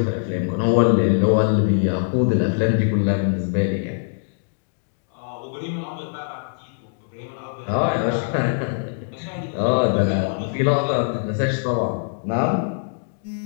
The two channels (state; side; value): silent; right; digital silence